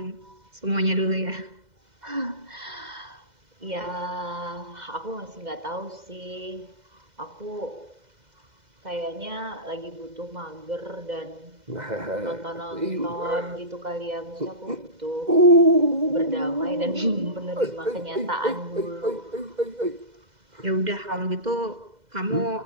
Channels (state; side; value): late; left; 2.0 ms